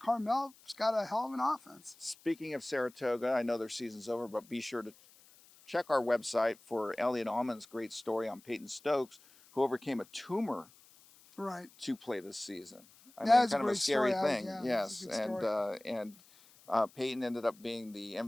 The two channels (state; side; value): noise; left; hiss, 26 dB below the sound